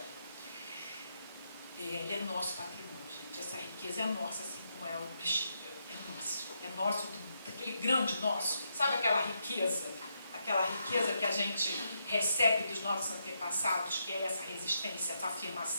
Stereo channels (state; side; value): inverted; both; correlation -0.80